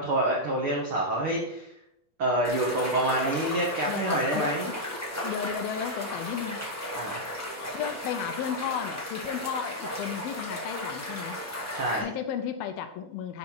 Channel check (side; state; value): both; normal; correlation -0.05